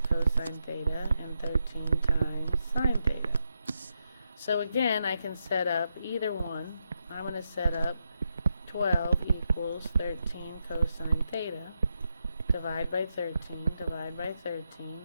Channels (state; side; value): inverted; both; correlation -0.84